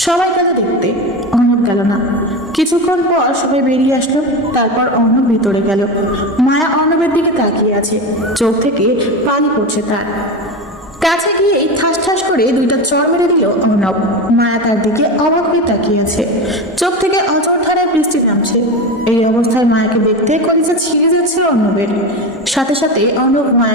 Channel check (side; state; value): both; normal; correlation 0.21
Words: সবাই গেল দেখতে, অর্ণব গেল না। কিছুক্ষণ পর সবাই বেরিয়ে আসলো। তারপর অর্ণব ভিতরে গেল। মায়া অর্ণবের দিকে তাকিয়ে আছে, চোখ থেকে পানি পড়ছে তার। কাছে গিয়ে ঠাস ঠাস করে দুইটা চড় মেরে দিল অর্ণব। মায়া তার দিকে অবাক হয়ে তাকিয়ে আছে, চোখ থেকে অঝোর ধারায় বৃষ্টি নামছে। এই অবস্থায় মায়াকে দেখতে কলিজা ছিঁড়ে যাচ্ছে অর্ণবের। সাথে সাথে অর্ণব